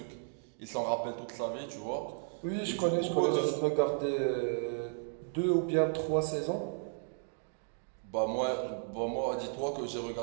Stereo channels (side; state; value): left; silent; digital silence